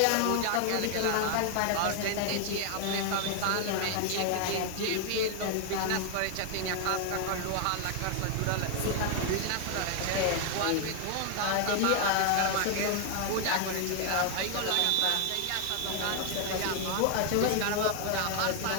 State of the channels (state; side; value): different; both; correlation 0.00